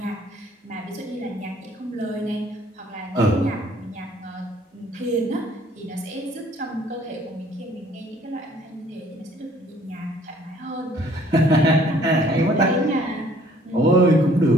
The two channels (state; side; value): normal; both; correlation 0.58